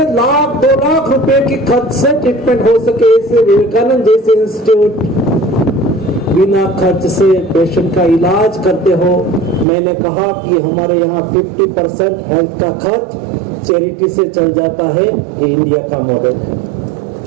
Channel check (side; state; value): left; drops out; at 9.7 s